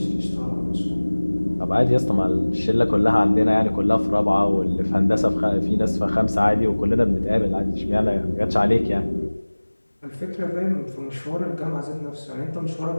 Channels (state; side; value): inverted; both; correlation -1.00